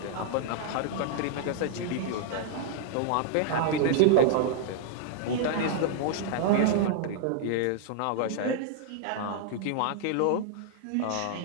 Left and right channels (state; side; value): different; both; correlation -0.01